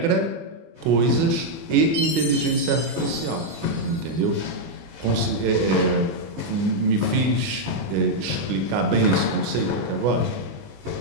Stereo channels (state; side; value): late; left; 25 ms